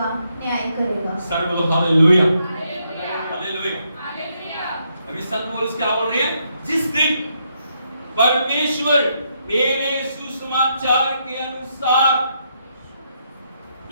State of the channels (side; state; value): both; inverted; correlation -0.77